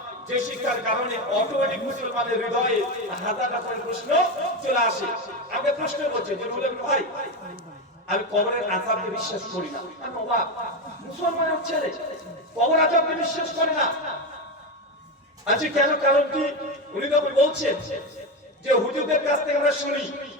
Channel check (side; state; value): both; normal; correlation 0.15